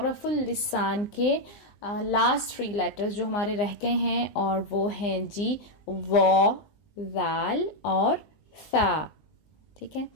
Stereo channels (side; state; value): right; late; 20 ms